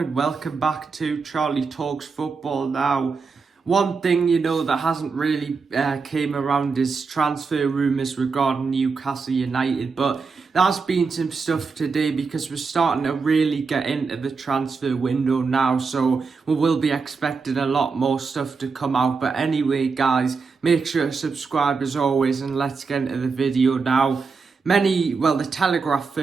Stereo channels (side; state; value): left; quieter; 4.9 dB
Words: welcome back to Charlie Talks Football. Now, one thing that hasn't really came around is transfer rumours regarding Newcastle United, but there's been some stuff today because we're starting to really get into the transfer window now, so we will be expecting a lot more stuff to come out. But anyway guys, make sure to subscribe as always and let's get into the video now. The Telegraph